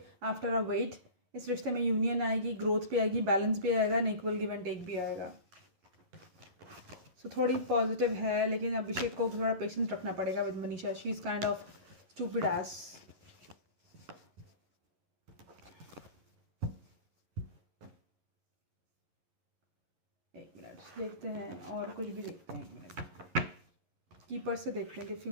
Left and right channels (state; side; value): late; left; 11 ms